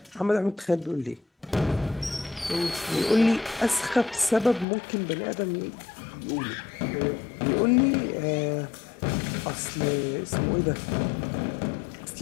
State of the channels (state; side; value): drops out; right; at 4.7 s